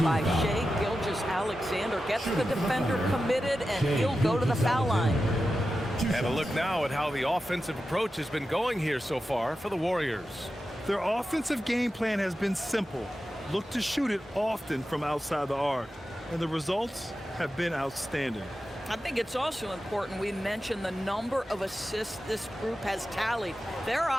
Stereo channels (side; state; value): both; normal; correlation 0.92